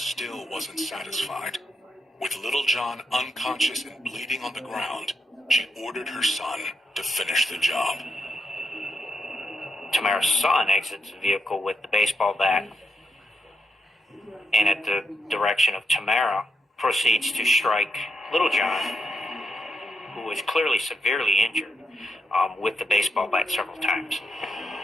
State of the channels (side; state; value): both; normal; correlation 0.82